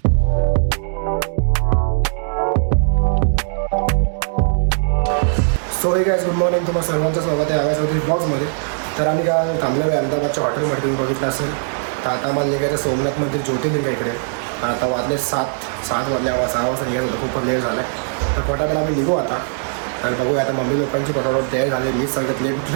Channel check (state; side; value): silent; left; digital silence